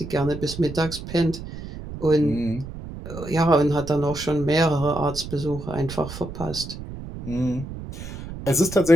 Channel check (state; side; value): noise; right; rumble, 10 dB below the sound